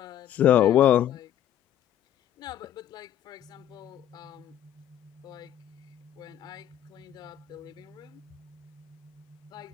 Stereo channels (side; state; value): right; quieter; 11.0 dB